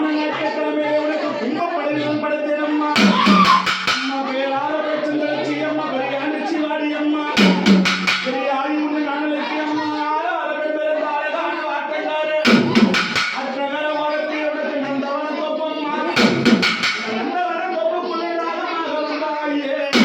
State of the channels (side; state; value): both; identical; correlation 1.00